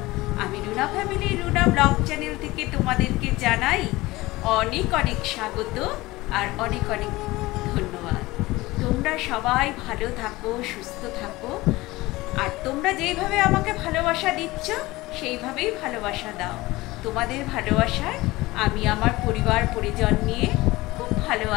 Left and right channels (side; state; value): right; quieter; 19.8 dB